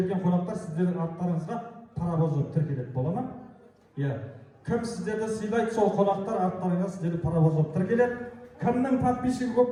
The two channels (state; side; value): identical; both; correlation 1.00